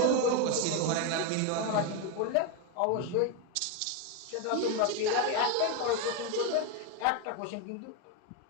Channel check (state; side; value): different; both; correlation 0.02